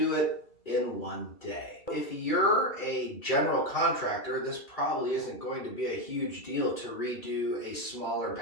it in one day. If you're a general contractor, this probably isn't going to be a huge deal to redo a smaller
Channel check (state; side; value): late; right; 2.3 ms